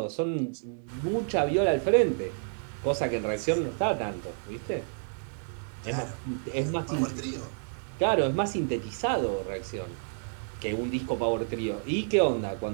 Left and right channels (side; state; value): left; silent; 58 dB below the other